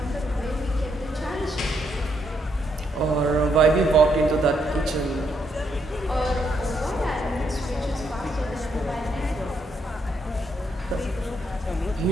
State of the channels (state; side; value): normal; both; correlation 0.76